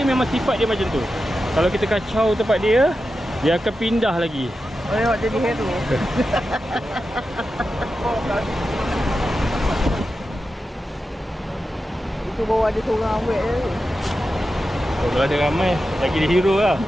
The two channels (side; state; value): both; normal; correlation 0.91